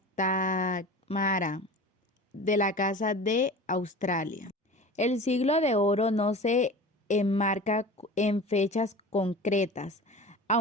de la Casa de Australia. El Siglo de Oro no se enmarca en fechas concretas,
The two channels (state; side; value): normal; both; correlation 0.36